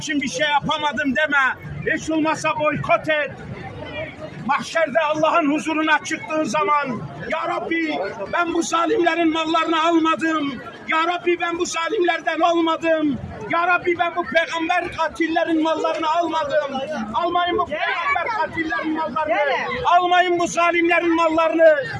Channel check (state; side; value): identical; both; correlation 1.00